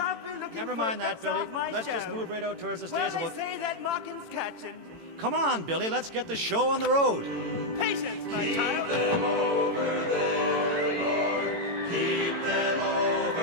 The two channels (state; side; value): late; left; 18 ms